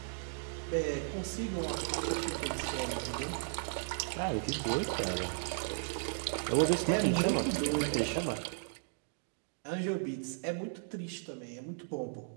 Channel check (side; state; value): left; silent; digital silence